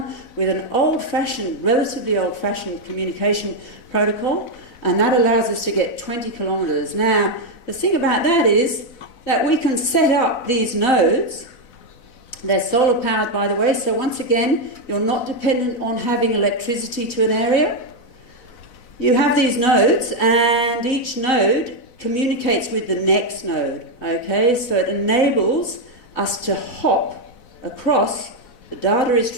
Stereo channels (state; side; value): late; right; 4.0 ms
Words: with an old-fashioned, relatively old-fashioned communication protocol, and that allows us to get 20 kilometers. Now, the thing about that is that we can set up these nodes. They're solar powered, by the way, so once again, you're not dependent on having electricity to an area. You have these nodes, and each node communicates with the next node, okay? So it enables us to hop across, the data is